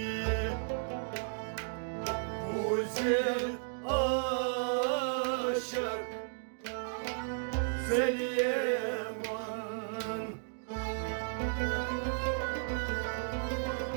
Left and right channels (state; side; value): silent; left; digital silence